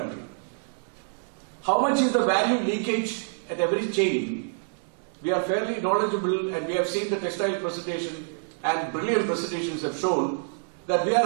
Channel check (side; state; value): left; silent; 60 dB below the other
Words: How much is the value leakage at every chain? We are fairly knowledgeable, and we have seen the textile presentation, and brilliant presentations have shown that we